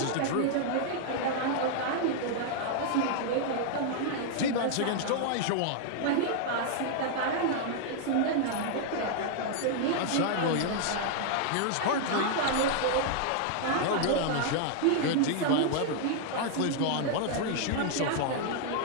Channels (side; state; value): both; different; correlation 0.00